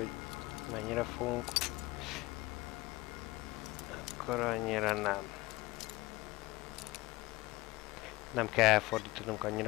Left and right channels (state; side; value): quieter; right; 20.6 dB